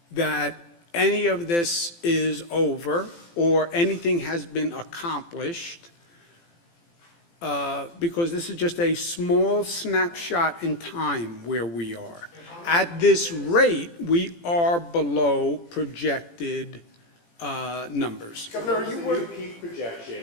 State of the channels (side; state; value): right; late; 18 ms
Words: that any of this is over or anything has been accomplished, because this is just a small snapshot in time where we are. At this rate, we are below projected numbers. Governor, are you worried? Peak